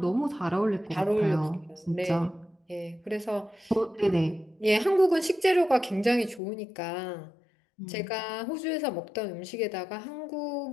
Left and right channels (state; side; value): drops out; right; at 6.4 s